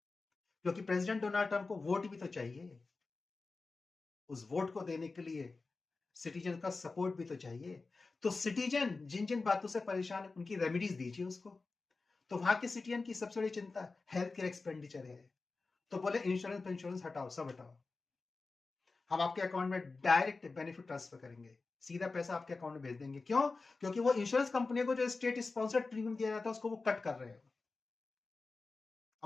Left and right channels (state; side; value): quieter; right; 3.9 dB